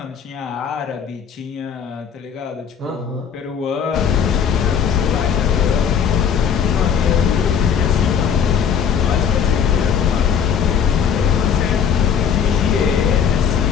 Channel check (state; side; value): quieter; right; 7.6 dB